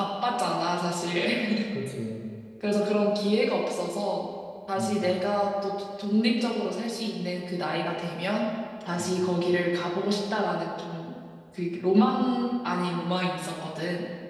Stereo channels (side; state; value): both; identical; correlation 1.00